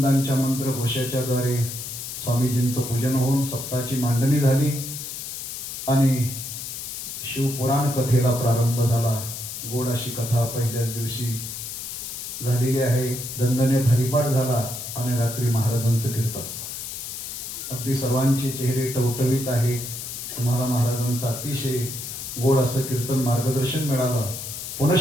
मंत्रघोषाच्या द्वारे स्वामीजींचं पूजन होऊन सप्ताहाची मांडणी झाली आणि शिवपुराण कथेला प्रारंभ झाला. गोड अशी कथा पहिल्याच दिवशी झालेली आहे. दणदणीत हरिपाठ झाला आणि रात्री महाराजांचं कीर्तन. अगदी सर्वांचे चेहरे टवटवीत आहे. तुम्हाला महाराजांचं अतिशय गोड असं कीर्तन मार्गदर्शन मिळालं.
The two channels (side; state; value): left; noise; hiss, 7 dB below the sound